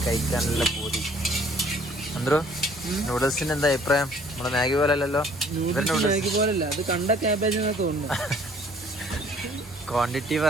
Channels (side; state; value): both; normal; correlation 0.58